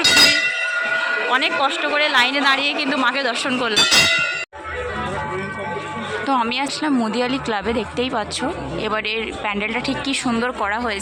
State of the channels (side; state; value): both; identical; correlation 1.00